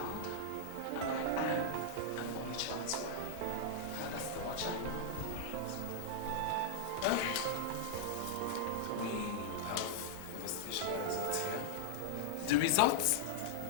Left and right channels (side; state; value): right; late; 8.3 ms